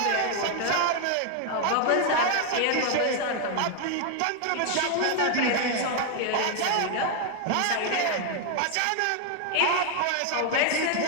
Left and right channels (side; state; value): both; different; correlation 0.00